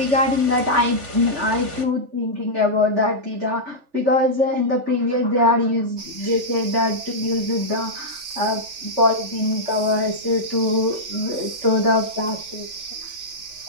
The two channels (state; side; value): late; left; 3.4 ms